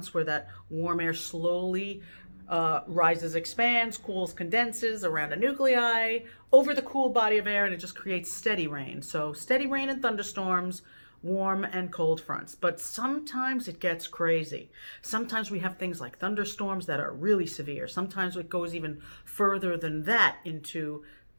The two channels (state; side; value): inverted; both; correlation -1.00